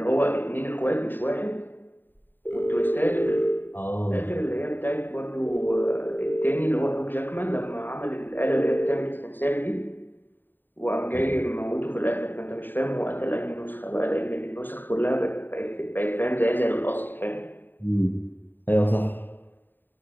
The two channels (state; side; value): late; right; 0.092 ms